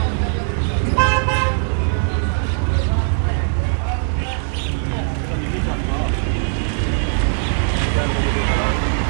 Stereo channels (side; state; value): left; silent; 66 dB below the other